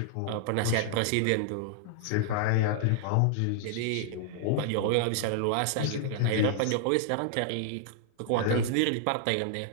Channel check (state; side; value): different; both; correlation 0.00